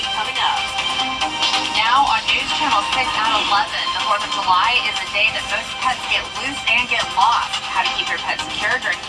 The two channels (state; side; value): identical; both; correlation 1.00